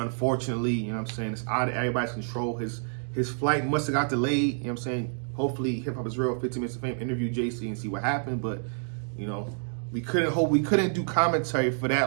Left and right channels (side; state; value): left; silent; digital silence